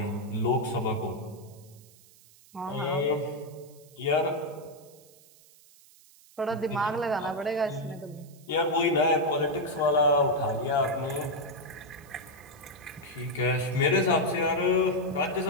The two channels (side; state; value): right; noise; hiss, 25 dB below the sound